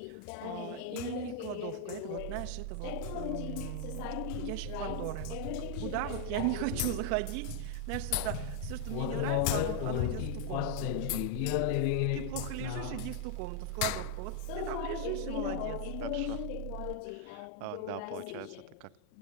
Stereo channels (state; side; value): different; both; correlation 0.00